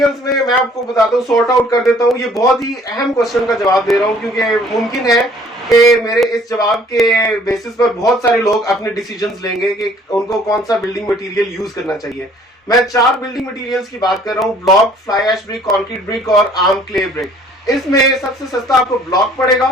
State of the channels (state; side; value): normal; both; correlation 0.56